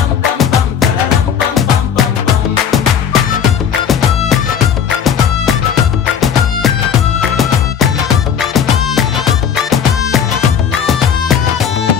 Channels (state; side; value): quieter; right; 7.9 dB